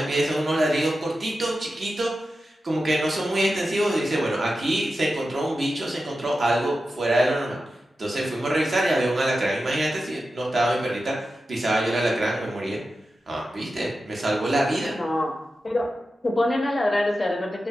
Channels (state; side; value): normal; both; correlation 0.92